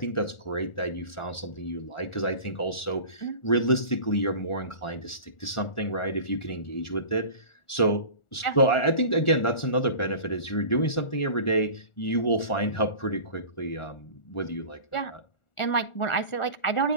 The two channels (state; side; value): late; right; 1.4 ms